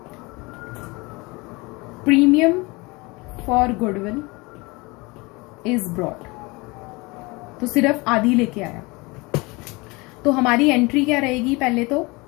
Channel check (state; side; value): quieter; right; 25.2 dB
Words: premium for goodwill is brought. तो सिर्फ आधी लेके आया। तो हमारी एंट्री क्या रहेगी, पहले तो